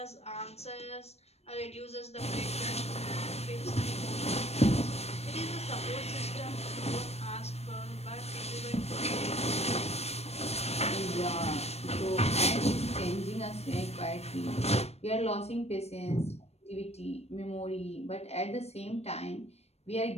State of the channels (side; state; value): right; late; 0.31 ms